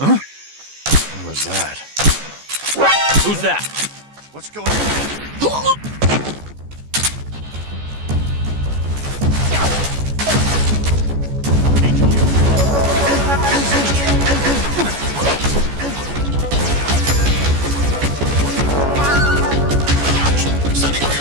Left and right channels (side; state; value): left; late; 14 ms